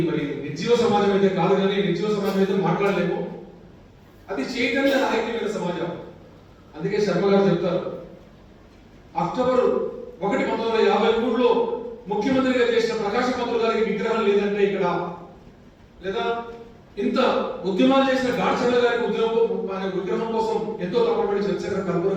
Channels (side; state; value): both; identical; correlation 1.00